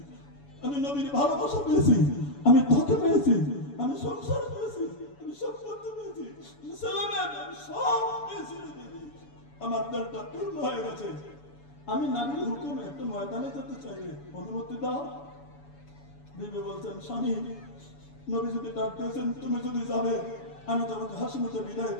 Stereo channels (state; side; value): late; right; 7.0 ms